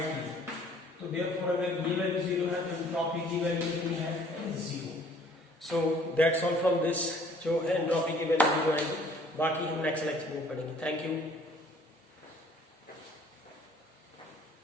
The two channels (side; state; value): both; normal; correlation 0.56